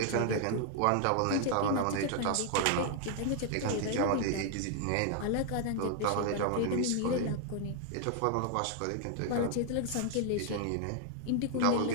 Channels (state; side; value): different; both; correlation 0.00